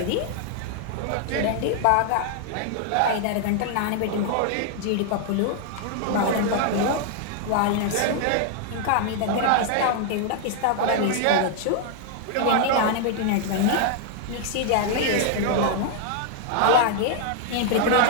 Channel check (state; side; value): different; both; correlation 0.00